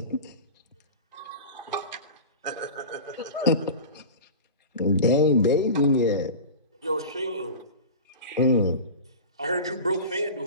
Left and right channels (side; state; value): both; inverted; correlation -0.32